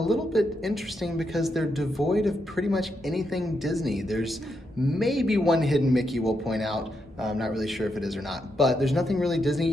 bit interesting because they're devoid of pretty much anything Disney. There's maybe one hidden Mickey we'll point out. I'm not really sure if it is or not, but there's nothing really Disney.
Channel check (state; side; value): normal; both; correlation 0.82